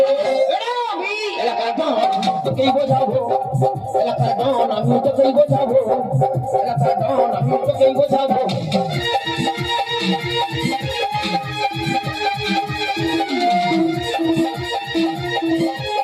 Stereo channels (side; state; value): both; identical; correlation 1.00